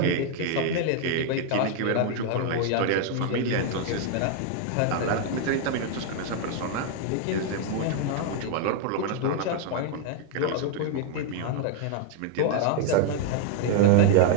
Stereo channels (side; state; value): both; different; correlation 0.00